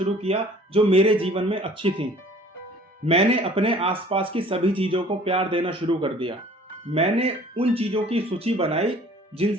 किया जो मेरे जीवन में अच्छी थीं। मैंने अपने आसपास की सभी चीजों को प्यार देना शुरू कर दिया। मैंने उन चीजों की सूची बनाई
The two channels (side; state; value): both; normal; correlation 0.51